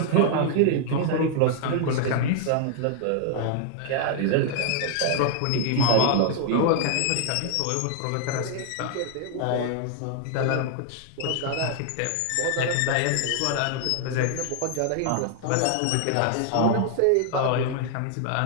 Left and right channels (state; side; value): different; both; correlation 0.00